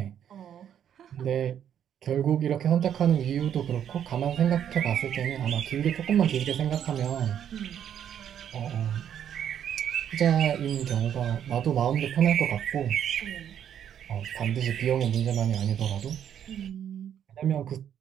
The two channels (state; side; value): quieter; left; 9.4 dB